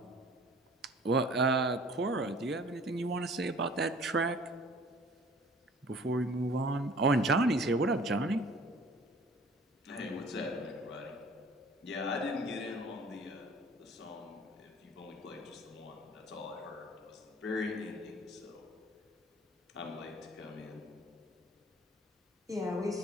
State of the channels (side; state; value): both; normal; correlation 0.50